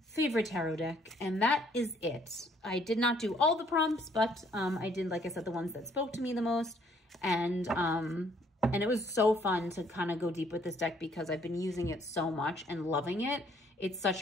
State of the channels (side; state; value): both; normal; correlation 0.64